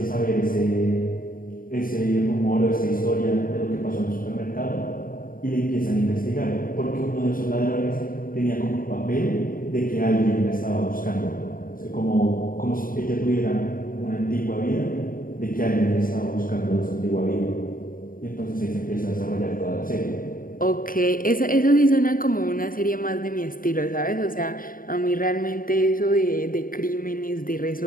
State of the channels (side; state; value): right; late; 0.41 ms